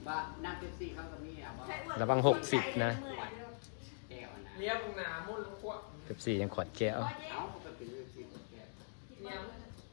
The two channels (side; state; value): right; silent; digital silence